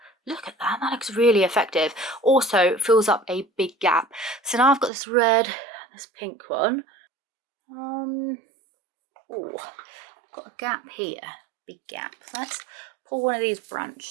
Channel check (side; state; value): left; drops out; at 4.9 s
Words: Look at that, that looks really effective. Also fills up a big gap. So now I've got this red and this pink one. Oh, I've got a gap here. Big gap. Let's pull one of these